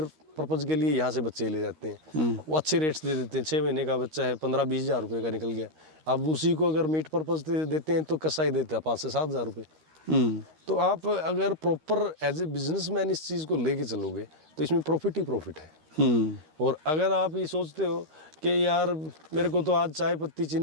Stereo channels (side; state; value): left; late; 13 ms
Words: पर्पज़ के लिए यहाँ से बच्चे ले जाते हैं, वो अच्छे रेट्स दे देते हैं। 6 महीने का बच्चा है 15-20 हज़ार रुपये का निकल गया, अब उसी को अगर मीट पर्पज़ देते हैं तो कसाई देता है 5 से 7 हज़ार रुपये। तो आप अगर प्रॉपर एज ए बिजनेसमैन इस चीज़ को लेके चलोगे तो इसमें प्रॉफिट ही प्रॉफिट है। और अगर आप ये सोचते हो कि यार मेरे को तो आज चाय पत्ती